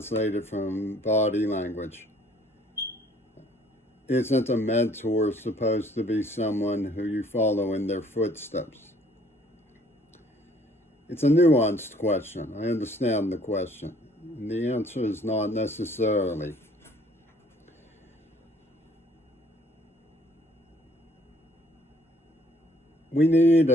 from body language, isn't a mentor supposed to be someone who you follow in their footsteps? It's a nuanced question. I understand the question. And the answer is not necessarily. We need,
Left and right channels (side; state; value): both; normal; correlation 0.60